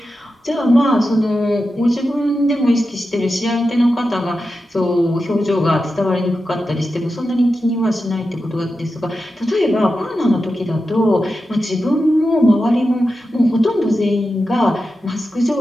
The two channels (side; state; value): both; normal; correlation 0.91